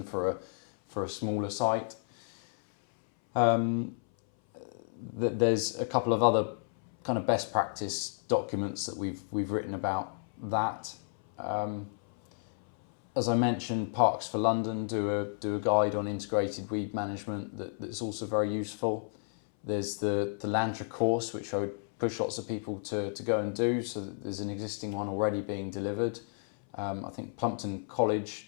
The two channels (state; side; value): silent; right; 57 dB below the other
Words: for a smaller site. There's a couple of other kind of best practice documents that we've written about that. As I mentioned, Parks for London do a guide on integrated weed management that's also very useful. There's the Landra course, which I would push lots of people to go and do, so that there's an existing one already being delivered. I think Plumpton College